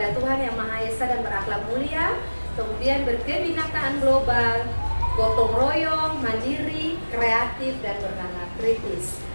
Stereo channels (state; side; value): inverted; both; correlation -1.00